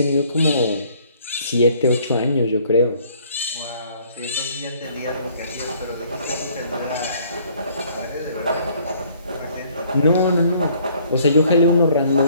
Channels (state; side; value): inverted; both; correlation -0.60